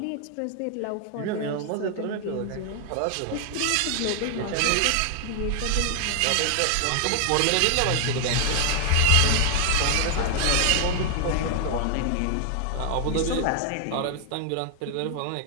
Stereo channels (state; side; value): different; both; correlation 0.00